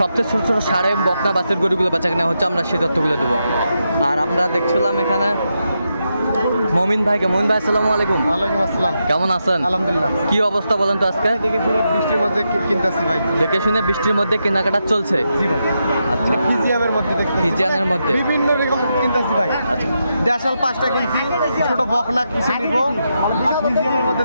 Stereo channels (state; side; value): inverted; both; correlation -0.85